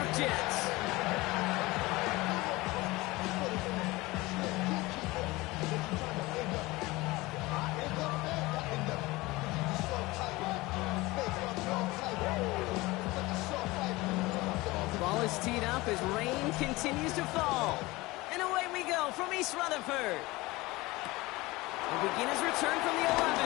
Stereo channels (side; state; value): right; quieter; 21.1 dB